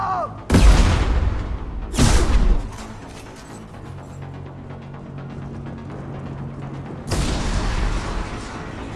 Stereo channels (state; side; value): identical; both; correlation 1.00